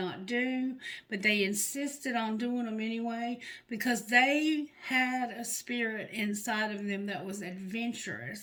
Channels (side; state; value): both; identical; correlation 1.00